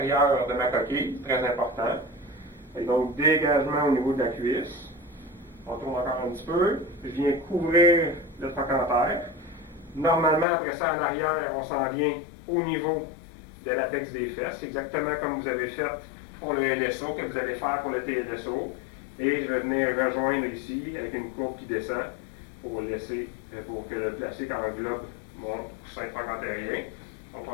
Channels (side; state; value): right; drops out; at 10.5 s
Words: de ma coquille, très important. Et donc, dégagement au niveau de la cuisse. On tourne encore un petit peu. Je viens couvrir le trochanter. Normalement, après ça, à l'arrière, on s'en vient au niveau de l'apex des fesses, exactement comme vous avez fait pour le LSO, que vous allez faire pour le TLSO. Et je vais venir rejoindre ici avec une courbe qui descend pour que le plastique englobe mon coussin trochanterien. On